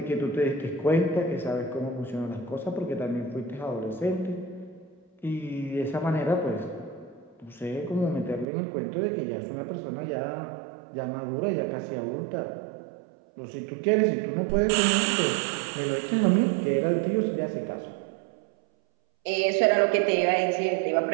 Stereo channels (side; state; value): left; drops out; at 8.5 s